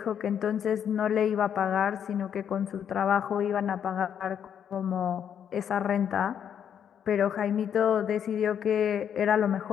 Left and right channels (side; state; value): right; quieter; 8.6 dB